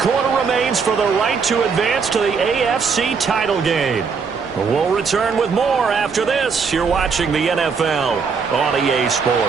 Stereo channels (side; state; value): left; quieter; 5.5 dB